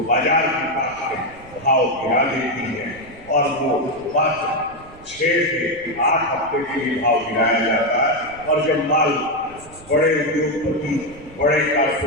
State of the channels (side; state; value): right; noise; rumble, 22 dB below the sound